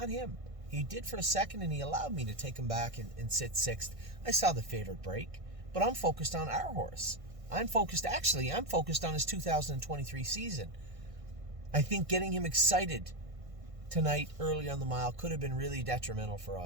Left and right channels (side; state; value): left; late; 1.6 ms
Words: him. He did for a second, and he allowed me to take him back and sit sixth. I saw the favorite break, but I'm focused on our horse. I'm focused on his 2023 season. I think getting him excited tonight early on the mile could have been really detrimental for